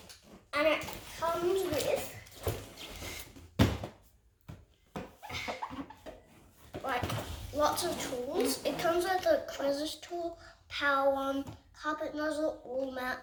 And it comes with like lots of tools. It comes with a crevice tool, power one, carpet nozzle, wall mount,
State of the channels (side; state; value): both; identical; correlation 1.00